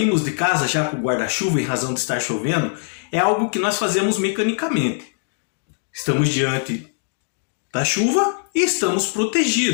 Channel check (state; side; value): silent; right; digital silence